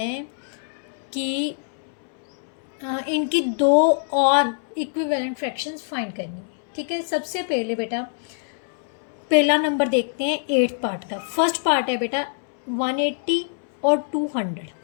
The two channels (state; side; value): silent; right; 62 dB below the other